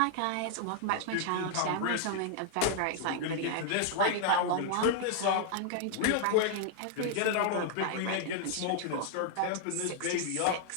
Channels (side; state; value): both; different; correlation 0.00